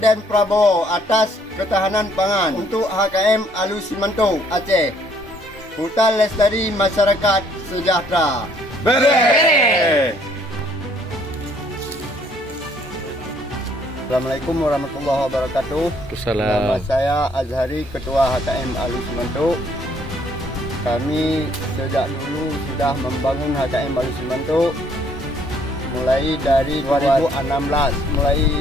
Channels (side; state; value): both; normal; correlation 0.64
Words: Prabowo atas ketahanan pangan untuk HKM Alus Simanto Aceh. Hutan lestari masyarakat sejahtera. Bere. Assalamualaikum warahmatullahi wabarakatuh. Nama saya Azhari, Ketua HKM Alus Simanto. Kami sejak dulu sudah membangun HKM Alus Simanto mulai dari 2016, mulai